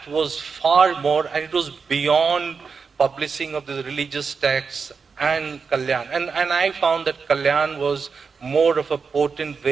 was far more, and it was beyond publishing of the religious texts and Kalyan. And I found that Kalyan was more of a potent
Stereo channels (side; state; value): left; quieter; 5.4 dB